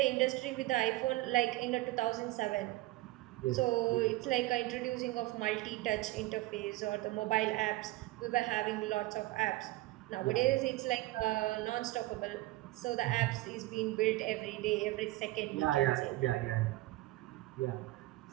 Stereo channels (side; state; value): left; quieter; 18.5 dB